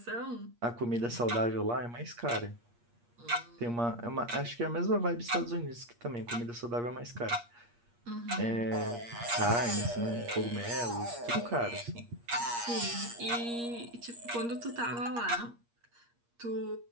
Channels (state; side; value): late; left; 8.5 ms